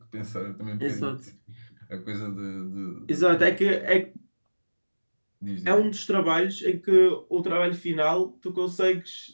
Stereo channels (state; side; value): inverted; both; correlation -1.00